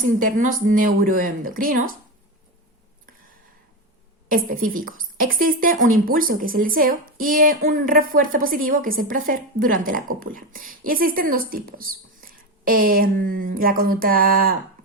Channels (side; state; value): both; normal; correlation 0.16